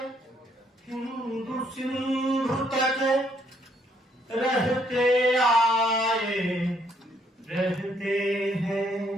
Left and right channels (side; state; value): both; normal; correlation 0.70